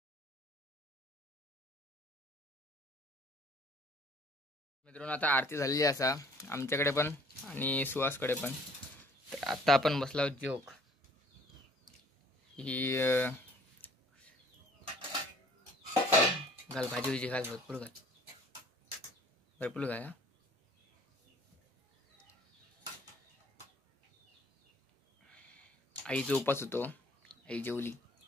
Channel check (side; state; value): both; normal; correlation 0.55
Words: मित्रांनो आता आरती झालेली असा आमच्याकडे पण आणि सुहासकडे पण तर आता आपण बसला जोक ही घाल भाजी विजी घाल भरपूर घाल आईचा उपास होतो आई जेवली